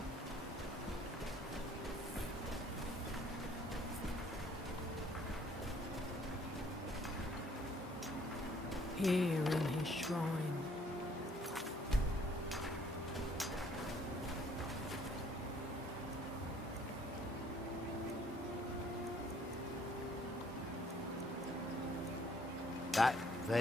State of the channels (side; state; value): both; normal; correlation 0.61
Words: Here in his shrine. That